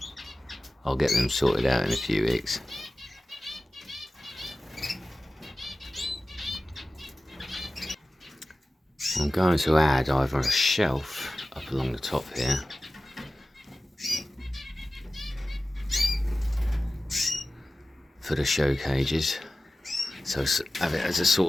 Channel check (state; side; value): normal; both; correlation 0.96